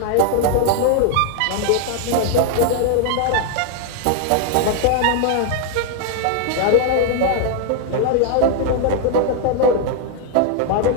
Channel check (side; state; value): both; different; correlation 0.00